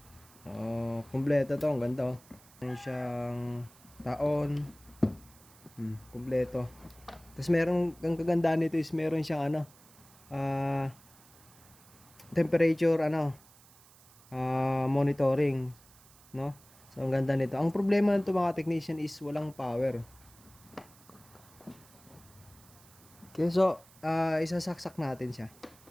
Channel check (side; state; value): right; noise; hiss, 25 dB below the sound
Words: Kumpleto to, ang ganda, oh. Meron siyang taon, kumpleto. Tapos meron, ang kagandaan nito is meron siyang temperature, monitoring, no? So ang ganda nito. Ang problema nito mga technician is walang power. Okay, so isasaksak natin siya.